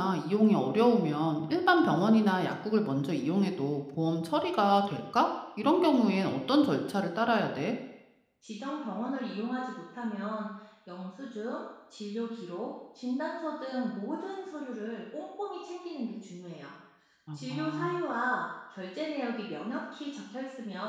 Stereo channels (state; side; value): identical; both; correlation 1.00